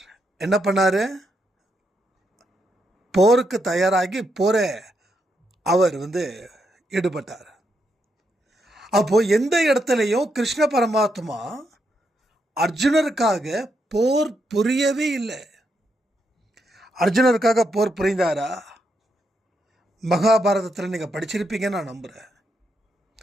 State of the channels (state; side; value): normal; both; correlation 0.80